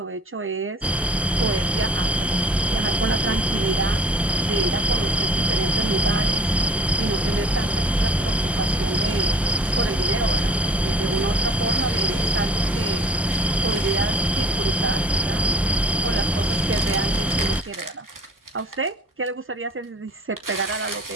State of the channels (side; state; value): both; normal; correlation 0.48